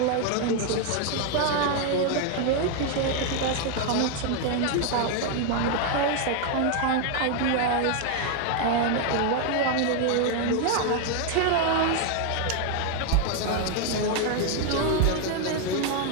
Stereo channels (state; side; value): different; both; correlation 0.01